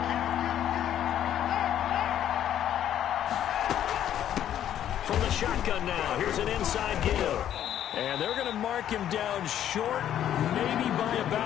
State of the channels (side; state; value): right; quieter; 10.8 dB